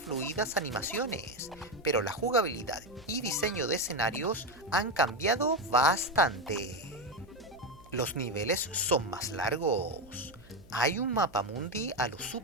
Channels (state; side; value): noise; right; hum, 24 dB below the sound